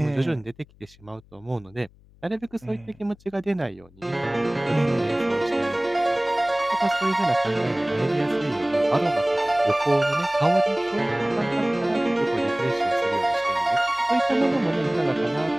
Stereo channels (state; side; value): noise; left; hum, 27 dB below the sound